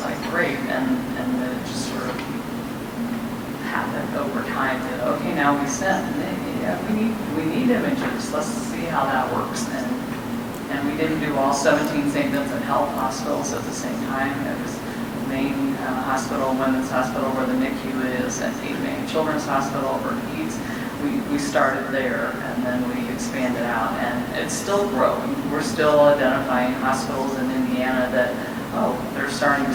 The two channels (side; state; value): both; identical; correlation 1.00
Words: like great. And then it just sort of happened over time that, okay, now we sent. And yeah, we need images. Let's see how that works. And we didn't do all 17 St. Vincent Health hospitals at the same time. It was the main hospital, Women's Hospital, where the NICU is, and Cape May Children's Hospital, where PEDS. We started there, and then we expanded out, and it's still growing. We're still identifying hospitals in Indiana that, oh, they're starting to